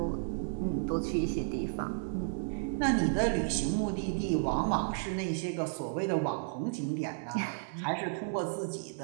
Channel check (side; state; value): left; silent; digital silence